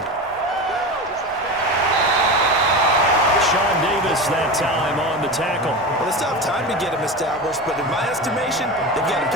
Sean Davis that time on the tackle. Well, they still have time to get him established, but in my estimation, they've got to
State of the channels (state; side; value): normal; both; correlation 0.25